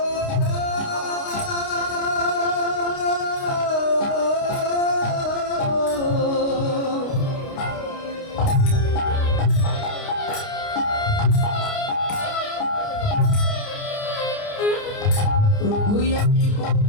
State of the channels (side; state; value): right; late; 29 ms